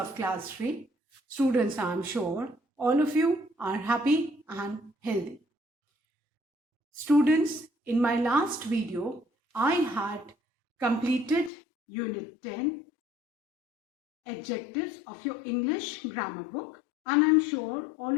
class 3. Students, I am sure all of you are happy and healthy. Students, in my last video, I had completed Unit 10 adjectives of your English grammar book, and I'm sure all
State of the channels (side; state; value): right; drops out; at 11.5 s